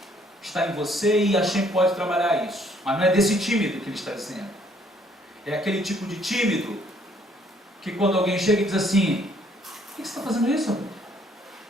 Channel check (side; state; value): both; normal; correlation 0.64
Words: Está em você e a Hashem pode trabalhar isso. Mas não é desse tímido que ele está dizendo. É aquele tipo de tímido que quando alguém chega e diz assim: por que você está fazendo isso, amigo?